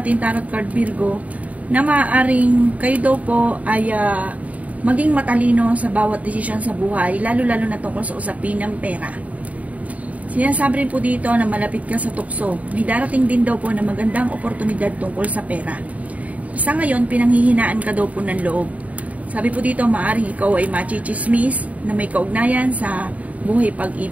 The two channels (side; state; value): left; late; 0.069 ms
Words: tarot card Virgo na maaaring kayo daw po ay maging matalino sa bawat desisyon sa buhay, lalo-lalo na tungkol sa usapin ng pera. Sinasabi rin po dito na malapit ka sa tukso. May darating din daw po na magandang oportunidad tungkol sa pera. Sa ngayon, pinanghihinaan ka daw po ng loob. Sabi po dito, maaaring ikaw ay machichismis na may kaugnayan sa buhay